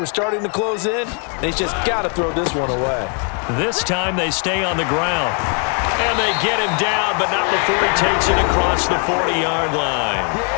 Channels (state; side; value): quieter; right; 39.9 dB